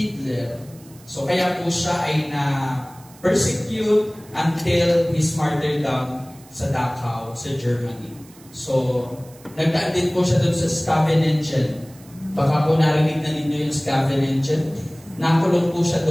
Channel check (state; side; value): noise; right; hiss, 25 dB below the sound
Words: So kaya po siya ay na-persecute until his martyrdom sa Dachau, sa Germany. So, nagdaan din po siya doon sa Scavenengen. Baka po narinig na ninyo yung Scavenengen. Nakulong po siya